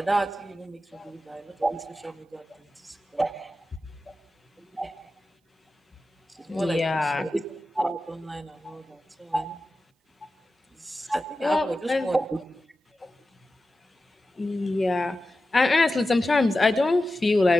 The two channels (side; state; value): both; normal; correlation 0.93